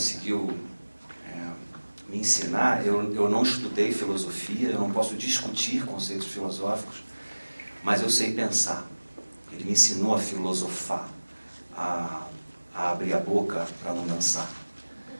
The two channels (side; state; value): both; inverted; correlation -1.00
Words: me ensinar, eu não estudei filosofia, eu não posso discutir conceitos filosóficos, mas eu sei pensar. Ele me ensinou a filosofar, a abrir a boca para não dançar,